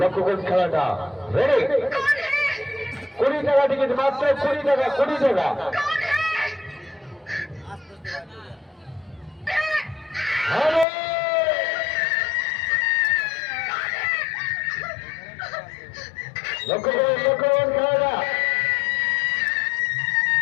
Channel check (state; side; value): drops out; right; at 10.9 s